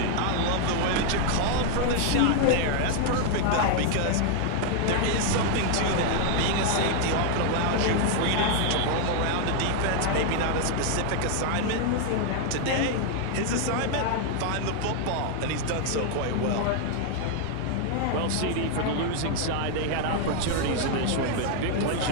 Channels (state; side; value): different; both; correlation 0.00